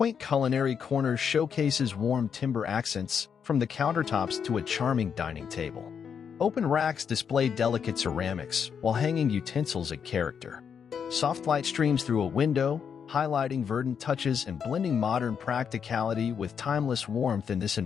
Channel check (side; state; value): right; quieter; 7.1 dB